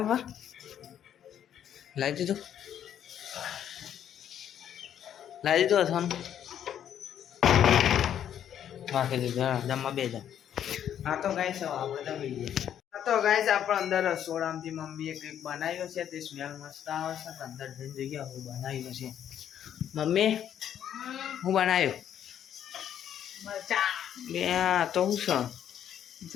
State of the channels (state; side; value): quieter; right; 9.9 dB